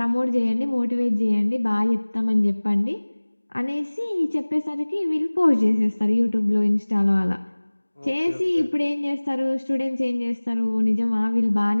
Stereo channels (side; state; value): both; inverted; correlation -1.00